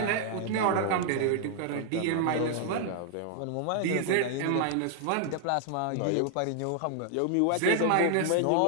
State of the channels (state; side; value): different; both; correlation 0.00